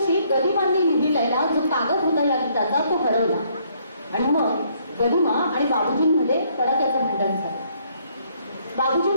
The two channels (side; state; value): both; inverted; correlation -0.67